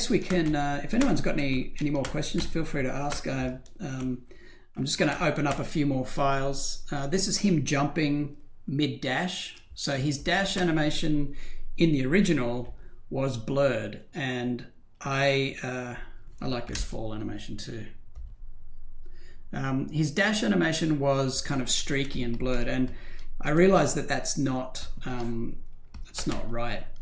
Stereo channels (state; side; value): identical; both; correlation 1.00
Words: we can, if anyone's got any more questions, feel free to ask. I'm just going to open up a few more files. This is him jumping mid-dash. So his dash animation in the original was blurred, and I like this fall animation too. His dash animation was kind of streaky and blurred, and I realized that that's not right.